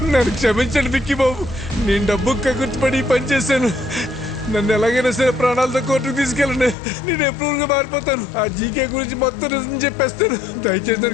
నన్ను క్షమించండి విక్కీ బాబు. నేను డబ్బు కగుర్చిపడి పని చేశాను. నన్ను ఎలాగైనా సరే ప్రాణాలతో కోర్టుకు తీసుకెళ్ళండి. నేను ఎప్రూవ్గా మారిపోతాను. ఆ జీకే గురించి మొత్తం నిజం చెప్పేస్తాను. దయచేసి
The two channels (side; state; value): right; drops out; at 6.8 s